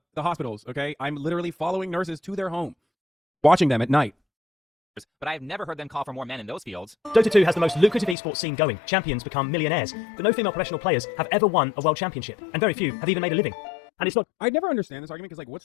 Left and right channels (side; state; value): right; drops out; at 8.2 s